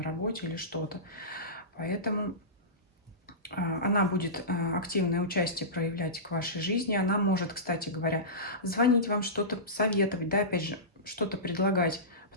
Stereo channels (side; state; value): both; normal; correlation -0.20